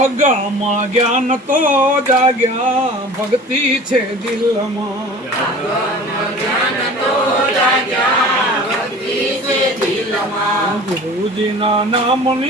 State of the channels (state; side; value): normal; both; correlation 0.41